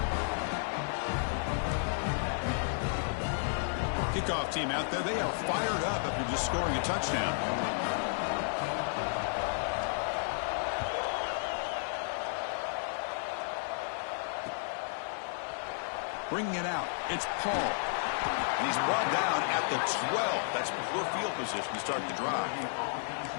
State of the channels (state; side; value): silent; right; 56 dB below the other